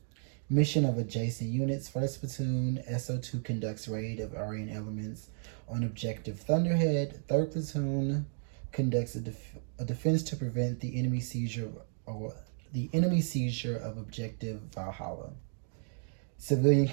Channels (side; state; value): left; silent; digital silence